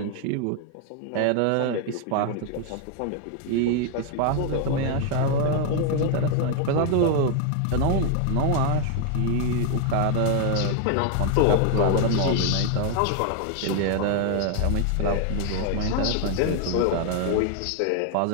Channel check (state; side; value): different; both; correlation 0.00